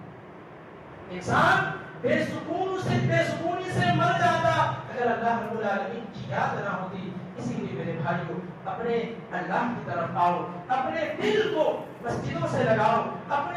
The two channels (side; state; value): both; identical; correlation 1.00